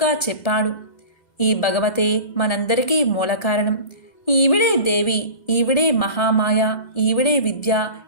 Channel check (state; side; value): late; right; 1.8 ms